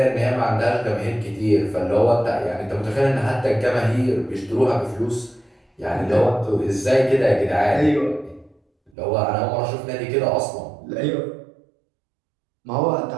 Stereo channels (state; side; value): drops out; left; at 8.9 s